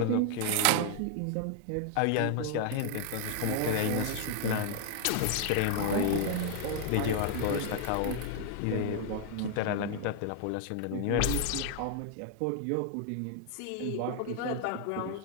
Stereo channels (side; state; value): both; different; correlation 0.00